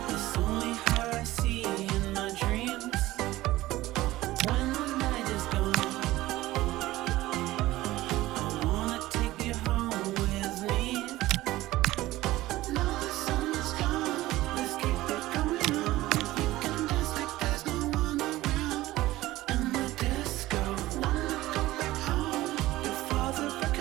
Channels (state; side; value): quieter; left; 17.1 dB